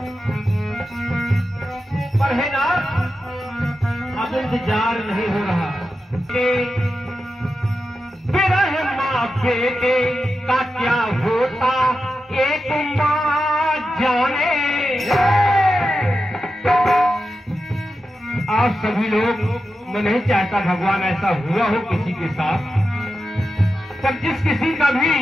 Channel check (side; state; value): both; normal; correlation 0.90